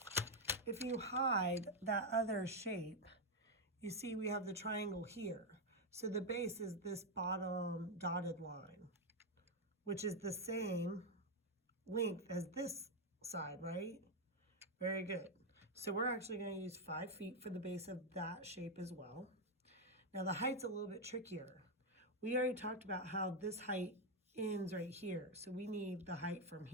If you hide that other shape, you see we have the triangle here. So the base is this bottom dotted line, which is the same length as this side, right? Very good. So we're actually going to use 5 feet for the base of that shape as well. Now the height's a little bit trickier. We already talked about how this height ends right here. So we need the height from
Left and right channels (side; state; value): both; normal; correlation 0.03